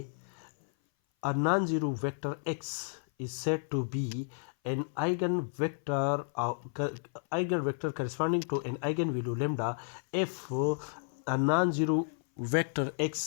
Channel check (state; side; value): silent; right; 56 dB below the other